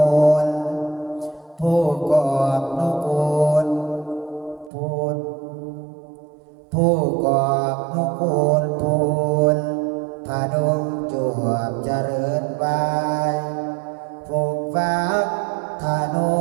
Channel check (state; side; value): drops out; left; at 4.7 s